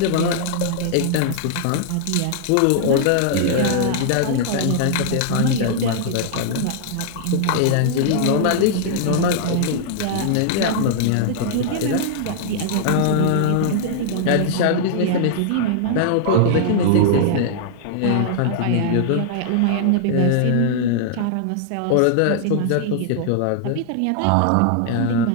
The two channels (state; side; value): different; both; correlation -0.01